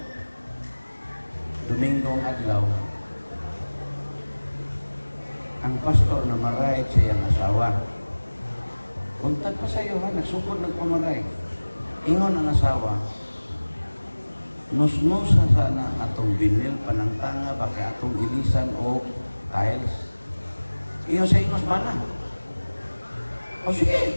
Domingong adlaw. Ang pastor na maray sa iyang asawa. Kuntag pa sa iyo, ha? Nagsupod nagpamaray. Ingon ang asawa, nusnusa sana atong binil panangtanga baka atong ilisan o tiles. Iyon sa ingos bana. O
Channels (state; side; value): inverted; both; correlation -1.00